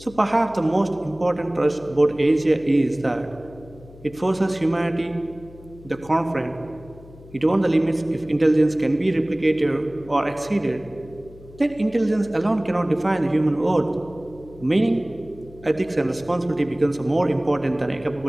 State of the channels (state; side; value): noise; left; hum, 20 dB below the sound